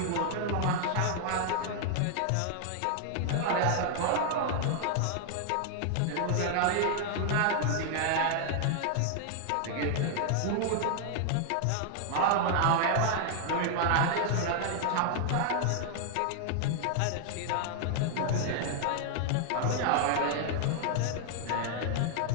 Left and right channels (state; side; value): different; both; correlation 0.00